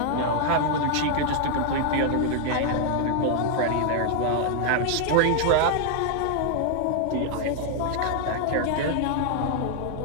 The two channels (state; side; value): different; both; correlation 0.00